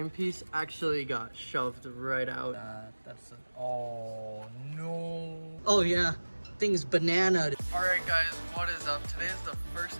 piece actually got shoved right out. That's oh no. Oh yeah, thing's banana. Alright guys, what is up? Today is the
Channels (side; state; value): both; inverted; correlation -1.00